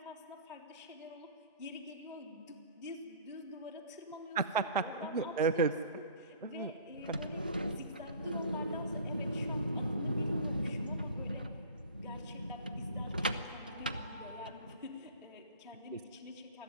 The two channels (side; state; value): both; inverted; correlation -0.43